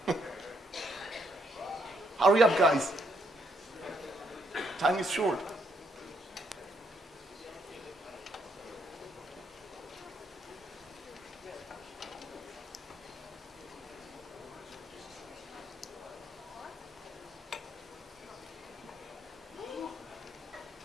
Hurry up, guys. Time is short.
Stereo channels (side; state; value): both; normal; correlation 0.73